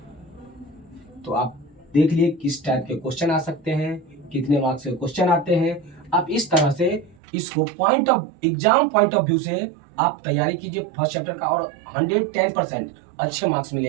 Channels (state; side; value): drops out; left; at 7.2 s